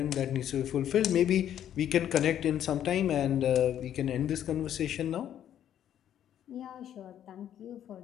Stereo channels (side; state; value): right; quieter; 10.5 dB